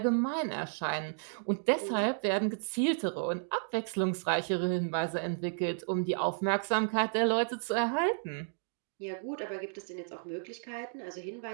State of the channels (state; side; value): silent; left; digital silence